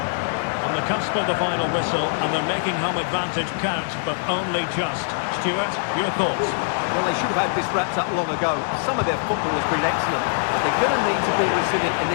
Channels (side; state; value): right; silent; digital silence